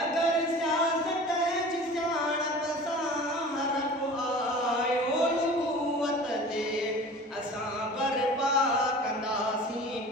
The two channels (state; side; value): normal; both; correlation 0.40